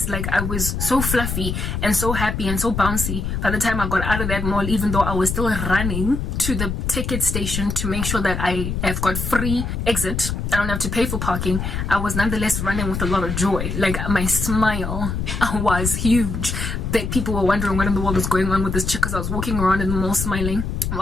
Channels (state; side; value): noise; left; rumble, 3 dB below the sound